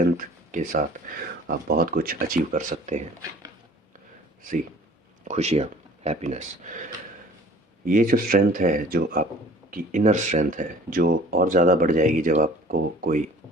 के साथ आप बहुत कुछ अचीव कर सकते हैं। सी खुशियाँ, हैप्पीनेस। ये जो स्ट्रेंथ है, जो आपकी इनर स्ट्रेंथ है, जो और ज़्यादा बढ़ जाएगी जब आपको कोई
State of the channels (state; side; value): normal; both; correlation 0.49